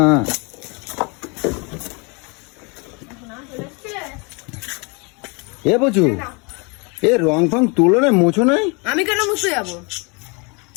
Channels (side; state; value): right; quieter; 31.2 dB